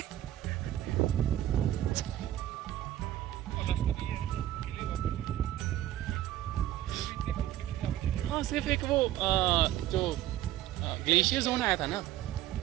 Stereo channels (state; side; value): quieter; left; 13.3 dB